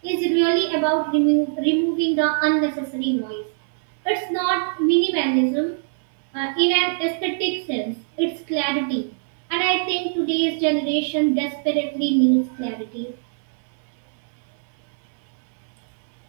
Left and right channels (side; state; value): left; silent; digital silence